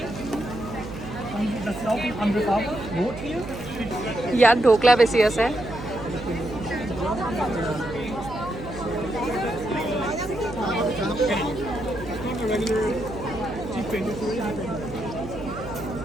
ইয়াত ঢোকলা বেছি আছে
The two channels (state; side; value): noise; right; hum, 11 dB below the sound